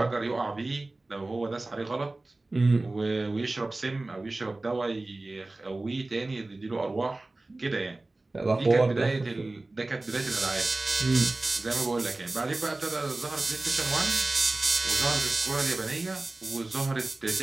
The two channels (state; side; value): quieter; left; 3.0 dB